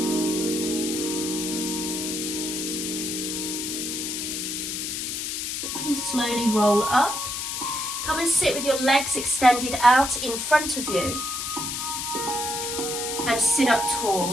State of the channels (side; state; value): left; noise; hiss, 3 dB below the sound